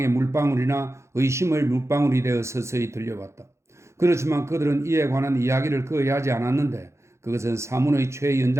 물방울이나 의심의 물방울이 되어 서서히 들려왔다. 그렇지만 그들은 이에 관한 이야기를 거의 하지 않았는데 그것은 사문의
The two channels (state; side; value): late; left; 0.14 ms